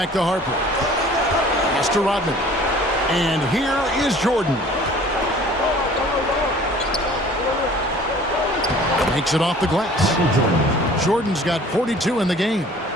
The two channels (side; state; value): both; normal; correlation 0.49